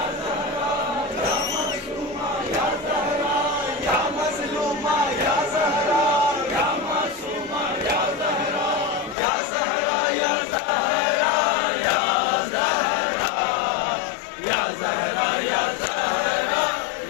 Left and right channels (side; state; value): right; drops out; at 9.2 s